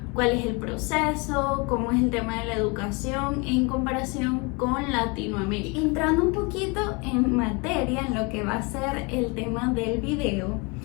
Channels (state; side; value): quieter; right; 29.5 dB